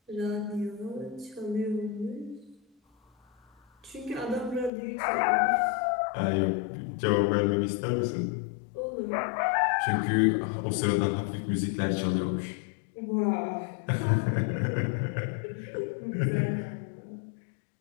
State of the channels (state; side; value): drops out; right; at 4.7 s